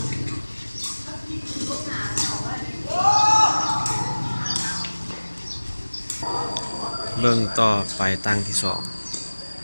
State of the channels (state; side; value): inverted; both; correlation -1.00